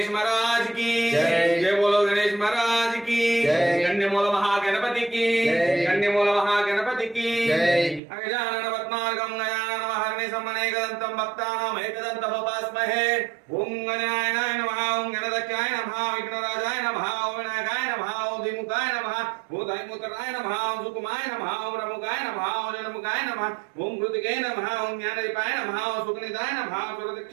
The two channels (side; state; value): left; drops out; at 8.0 s